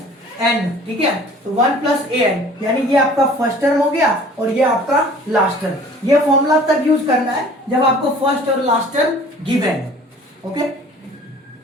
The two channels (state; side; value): normal; both; correlation 0.49